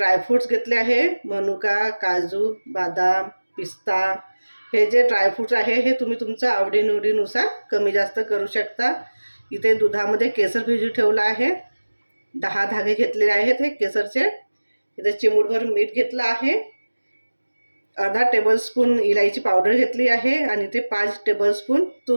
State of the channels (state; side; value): inverted; both; correlation -1.00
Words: घेतले आहे, मनुका, काजू, बदाम, पिस्ता। हे जे ड्रायफ्रूट्स आहे हे तुम्ही तुमच्या आवडीनिवडीनुसार कमी जास्त करू शकता। इथे दुधामध्ये केसर भिजू ठेवला आहे, 10 धागे घेतलेले आहेत हे केसरचे। इथे चिमूटभर मीठ घेतलं आहे, अर्धा टेबलस्पून इलायची पावडर घेतली आहे आणि ते 5 टेबलस्पून